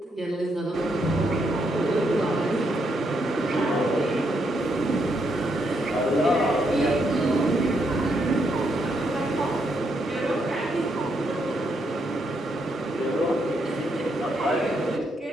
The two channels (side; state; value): both; normal; correlation 0.77